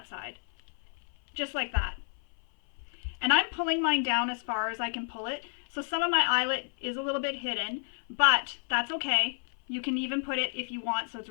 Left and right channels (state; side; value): silent; right; 57 dB below the other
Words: side. Just like that. And I'm pulling mine down as far as I can pull it. So some of my eyelet is a little bit hidden, but that's okay. You can even put it if you want so it's